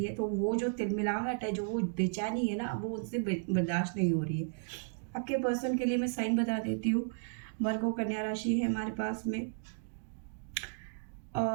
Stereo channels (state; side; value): silent; left; digital silence